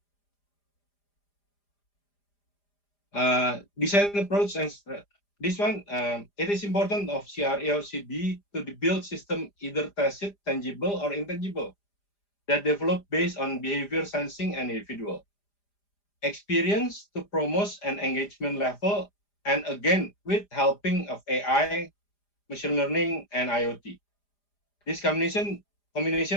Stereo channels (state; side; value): late; right; 4.9 ms